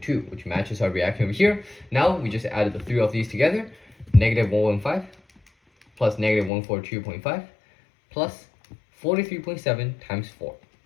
which matches our reaction over here. Now we just added the 3 of these together, negative 115 plus negative 142.5 plus 43.7 times 4.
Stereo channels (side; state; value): right; drops out; at 6.5 s